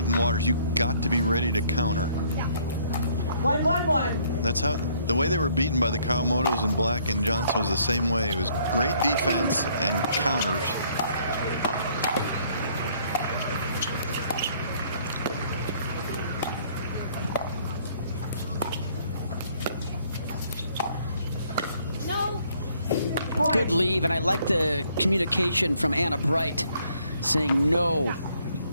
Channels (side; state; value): both; inverted; correlation -0.64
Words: and Waters, you got to be ready to counter. 1-1-1. That's how the way they were beaten by the Kawamotos and Black and Johnson was the same way. It was great defense and counters. Good leave, and I like the communication from Anna Bright saying no.